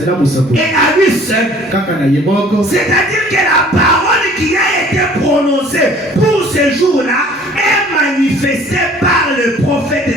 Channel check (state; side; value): normal; both; correlation 0.52